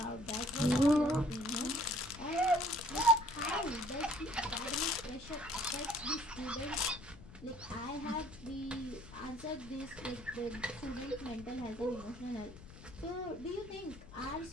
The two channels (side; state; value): left; noise; rumble, 17 dB below the sound